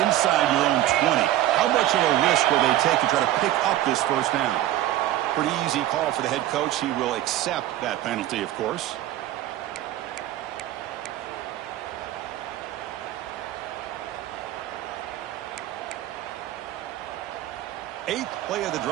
inside your own 20. How much of a risk will they take to try to pick up this first down? Pretty easy call for the head coach. He will accept that penalty, of course. Eighth play of the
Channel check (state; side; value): quieter; left; 13.9 dB